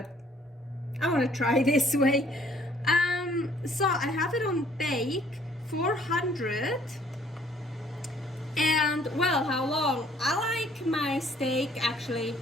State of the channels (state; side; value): normal; both; correlation 0.60